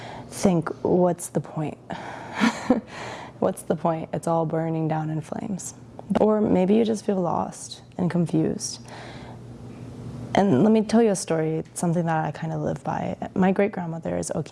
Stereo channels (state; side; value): identical; both; correlation 1.00